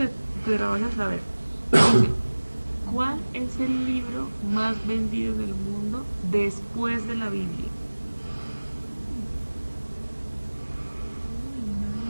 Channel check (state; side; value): inverted; both; correlation -1.00